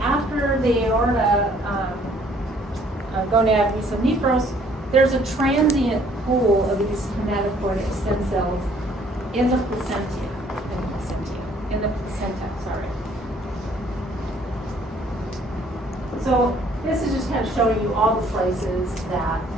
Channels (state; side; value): normal; both; correlation 0.61